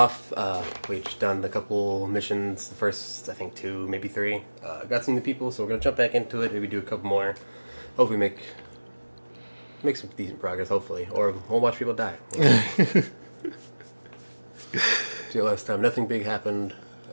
we've just done a couple missions, the first, I think, 2, maybe 3. Got some new people, so we're going to jump back into it, maybe do a couple more. Hopefully make some decent progress, hopefully, or we'll watch people die. See, last time, nothing big happened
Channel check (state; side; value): inverted; both; correlation -1.00